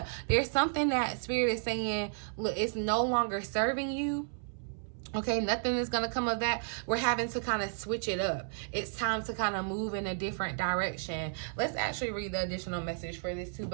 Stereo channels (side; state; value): left; silent; 56 dB below the other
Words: there's something that Spirit is saying, look, it's no longer serving you. Okay, nothing is going to come of that. We're having to kind of switch it up. It's time to kind of move in a different direction. Let's actually read the additional message for this too.